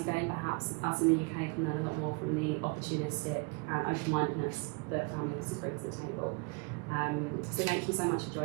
again, perhaps us in the UK can learn a lot more from the opportunistic and open-mindedness that family offices bring to the table. So thank you so much for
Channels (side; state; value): left; quieter; 31.9 dB